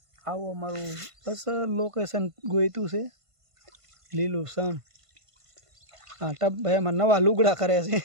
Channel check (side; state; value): left; late; 1.5 ms